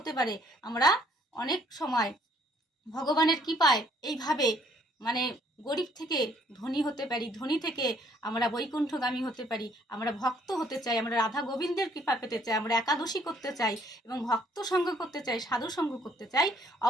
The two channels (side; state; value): both; normal; correlation 0.64